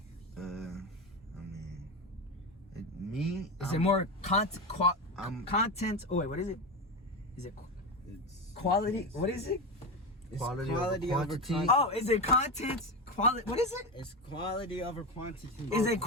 I mean, me. Is it more content? Oh wait, what is it? Is it it's quality? What is it? It's Quality quality over over quantity. quantity. Oh, is it content? Quality? What is it? It's quality over quantity. Is it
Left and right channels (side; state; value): both; normal; correlation 0.18